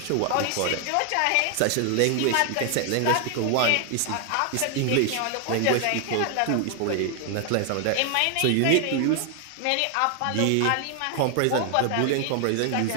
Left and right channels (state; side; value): different; both; correlation 0.00